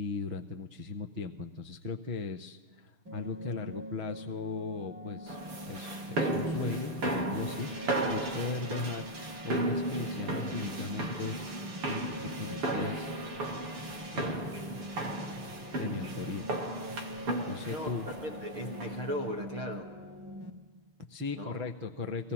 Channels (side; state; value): left; late; 6.9 ms